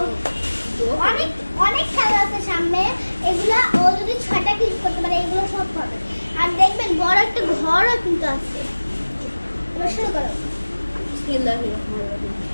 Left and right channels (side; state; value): both; inverted; correlation -1.00